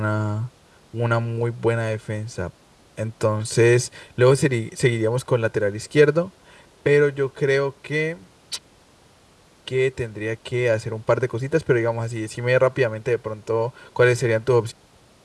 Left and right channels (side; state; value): both; identical; correlation 1.00